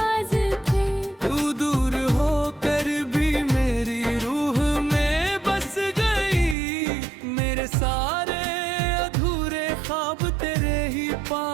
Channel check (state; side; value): drops out; left; at 6.6 s